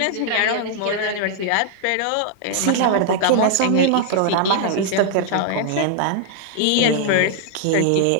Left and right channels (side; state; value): both; different; correlation 0.00